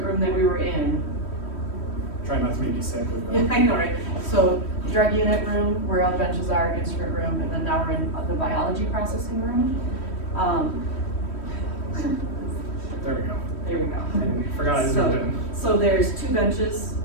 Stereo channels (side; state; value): right; late; 3.1 ms